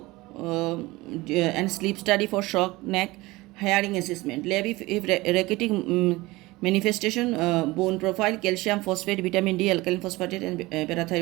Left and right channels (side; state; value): left; quieter; 20.7 dB